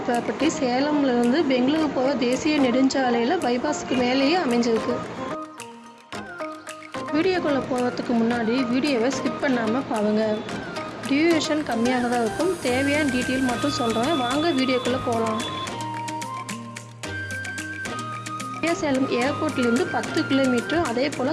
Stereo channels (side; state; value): both; identical; correlation 1.00